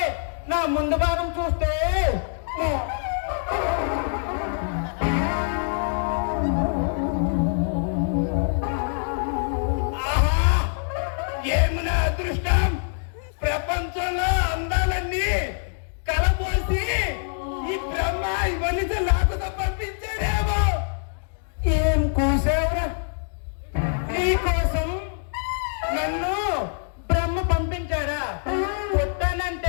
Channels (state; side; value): silent; right; digital silence